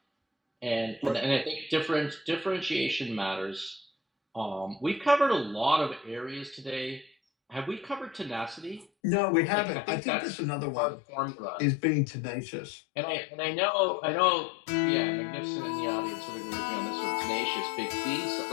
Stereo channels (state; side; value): drops out; right; at 8.8 s